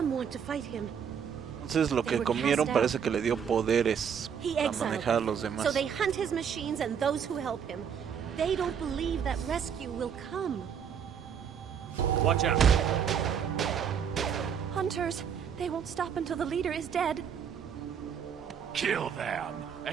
want to fight him. Entonces lo que comieron parece que le dio poderes He para exiled manejar a them. los demás. So they hunt his machines and those who help him. They don't believe that rescue will come. Watch out! Hunters, they won't stop until the leader is dead. Kill them!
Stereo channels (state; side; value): quieter; left; 7.7 dB